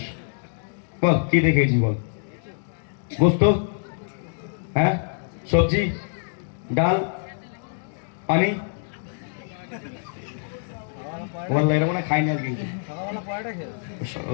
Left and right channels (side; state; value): right; silent; digital silence